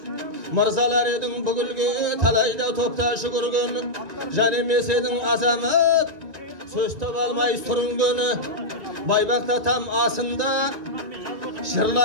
Мырзалар едің бүгілге талайда топта жүгірген, жан емес едің азамат, сөз таба алмай сүрінгені. Байбақта там асында,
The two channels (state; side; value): late; left; 1.9 ms